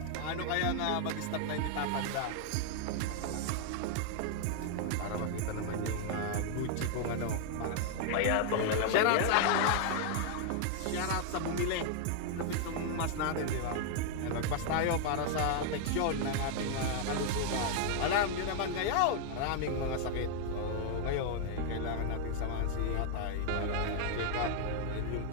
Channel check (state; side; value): different; both; correlation 0.00